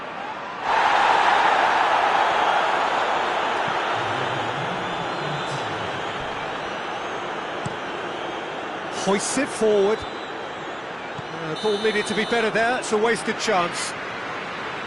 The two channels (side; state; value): both; identical; correlation 1.00